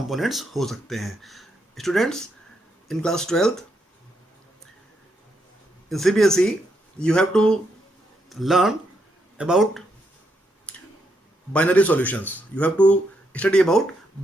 हो सकते हैं। Students, in class 12th in CBSE you have to learn about binary solutions. You have to study about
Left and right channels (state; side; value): normal; both; correlation 0.79